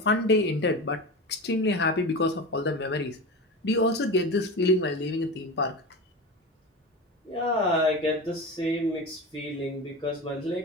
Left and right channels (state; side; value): normal; both; correlation 0.27